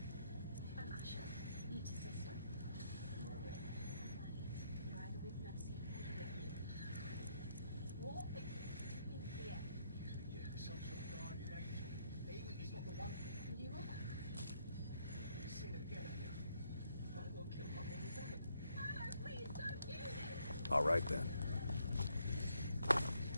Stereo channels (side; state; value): both; inverted; correlation -0.73